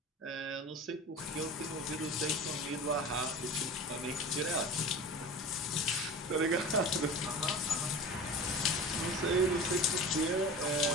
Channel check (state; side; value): normal; both; correlation 0.34